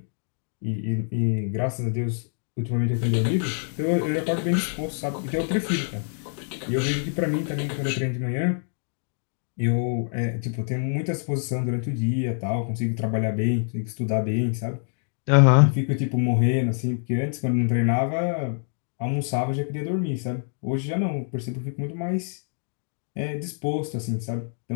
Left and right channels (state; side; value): silent; right; 61 dB below the other